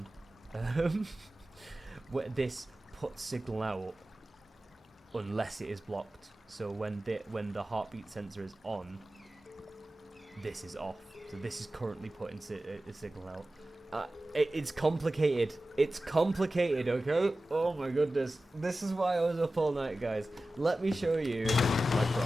This puts signal out unless it is blocked. So when the heartbeat sensor is on, this is off. So this is currently putting a signal out. It's complicated. It's complicated, okay? Oh my goodness. This is why I was up all night, guys. Let me show you my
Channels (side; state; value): both; normal; correlation 0.95